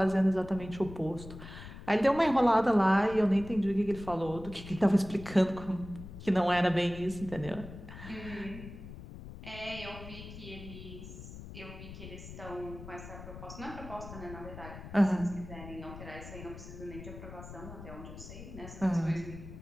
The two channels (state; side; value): noise; left; rumble, 13 dB below the sound